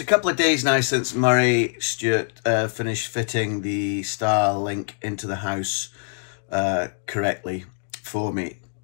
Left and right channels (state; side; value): silent; right; 63 dB below the other